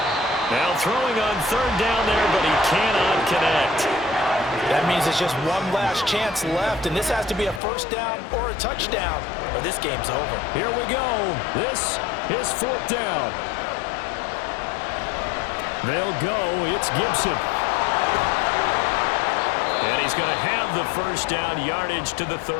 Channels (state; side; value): drops out; right; at 7.6 s